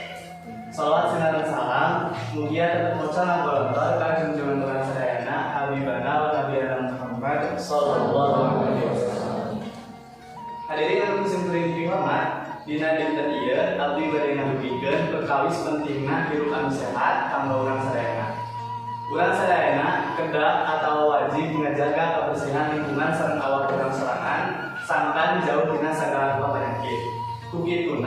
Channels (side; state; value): both; identical; correlation 1.00